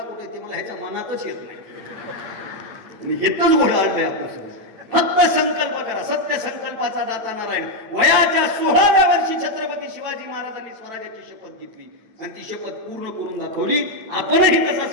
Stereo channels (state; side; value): late; left; 9.1 ms